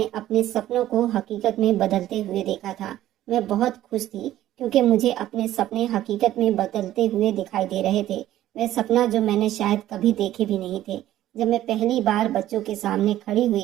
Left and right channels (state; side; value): quieter; left; 13.5 dB